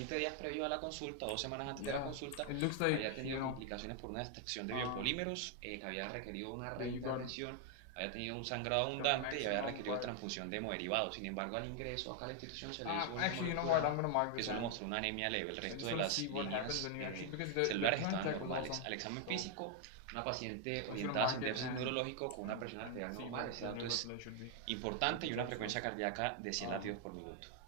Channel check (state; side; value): different; both; correlation 0.00